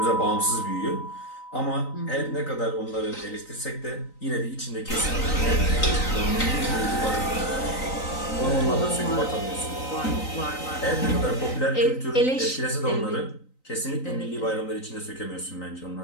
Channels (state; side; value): late; right; 3.9 ms